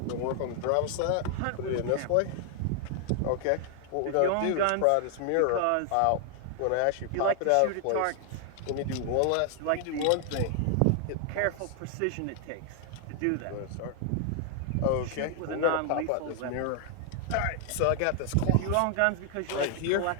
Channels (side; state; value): both; different; correlation 0.00